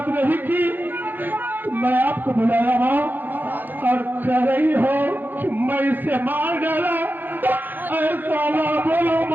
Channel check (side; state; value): left; late; 0.089 ms